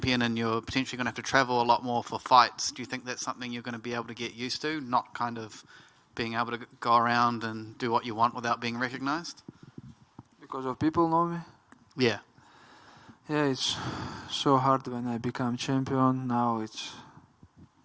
and you're potentially going to have to travel a lot more for fights, do you think that's something you're going to be able to get used to, not kind of being able to go around and do what you want without being recognized? Because of people know me. Yeah. Yeah, it's so hard when I become champion. Now it's,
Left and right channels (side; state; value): both; identical; correlation 1.00